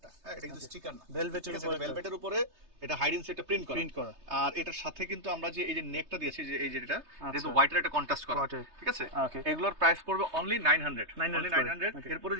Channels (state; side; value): late; left; 3.3 ms